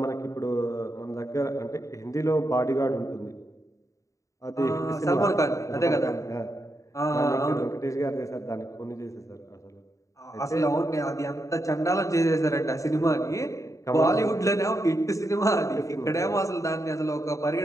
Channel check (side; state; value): right; late; 0.16 ms